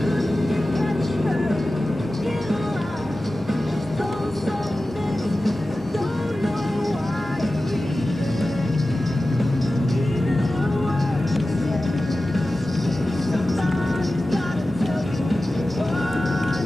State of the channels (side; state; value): both; normal; correlation 0.95